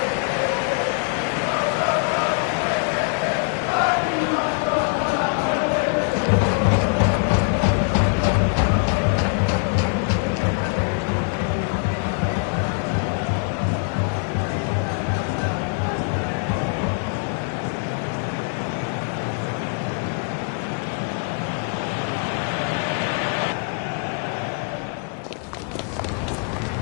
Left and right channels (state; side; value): quieter; right; 38.0 dB